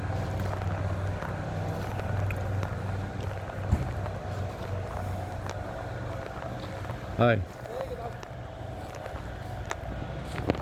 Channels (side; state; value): both; identical; correlation 1.00